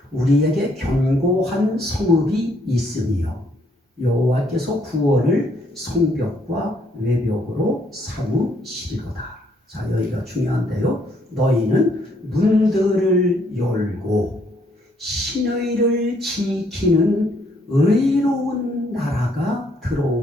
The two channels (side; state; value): both; normal; correlation 0.69